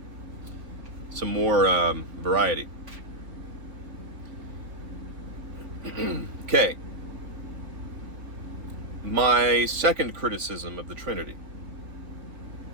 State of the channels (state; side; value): late; left; 3.5 ms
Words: more variety. Okay. My second criticism of the Trinity.